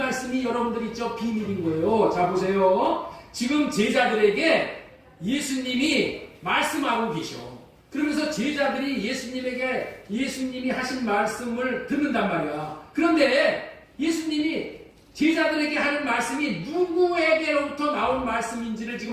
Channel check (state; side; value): identical; both; correlation 1.00